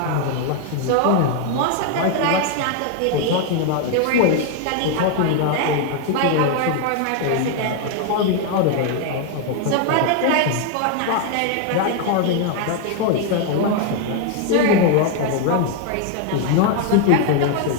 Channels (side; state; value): both; different; correlation 0.00